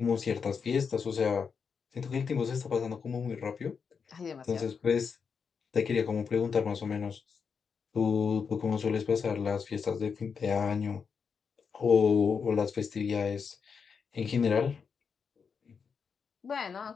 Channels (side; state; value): right; quieter; 6.0 dB